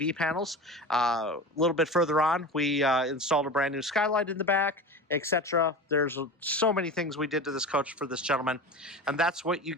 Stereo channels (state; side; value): normal; both; correlation 0.30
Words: panels. A little bit further on, we installed a brand new skylight in the back, etc. There's so many things we did to this coach for this gentleman, and that's what you